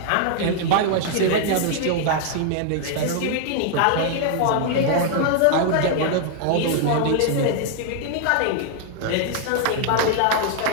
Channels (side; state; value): both; different; correlation 0.00